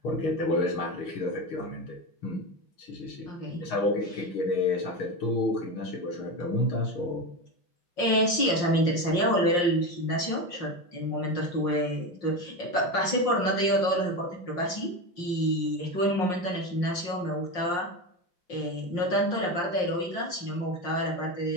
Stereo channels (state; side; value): late; right; 5.6 ms